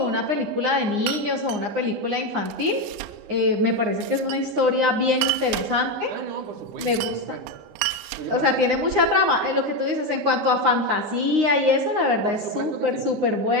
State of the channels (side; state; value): left; late; 9.7 ms